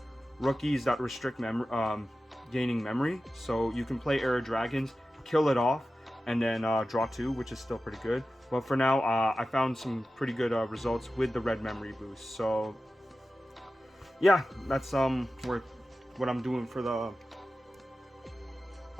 rookies that restrict gaining memory. So you can play Heir of Dragons, kill it off, and then draw 2, which is still pretty good. But for now, I found some pretty good results with the red memory boost. So yeah, that's what I'm doing for the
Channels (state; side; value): normal; both; correlation 0.94